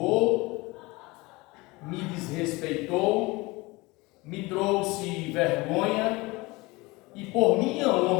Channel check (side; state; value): right; quieter; 23.1 dB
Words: me desrespeitou, me trouxe vergonha, e por minha